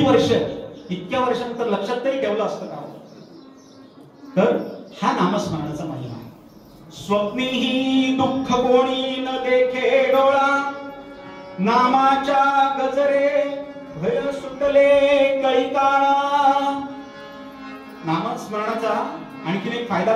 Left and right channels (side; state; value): both; identical; correlation 1.00